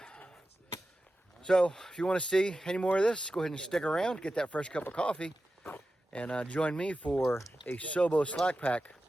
So if you want to see any more of this, go ahead and stick around, get that fresh cup of coffee, and join me for a Sobo slack pack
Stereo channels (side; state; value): both; normal; correlation 0.93